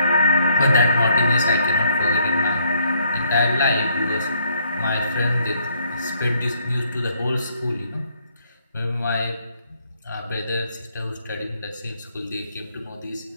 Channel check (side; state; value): both; inverted; correlation -0.68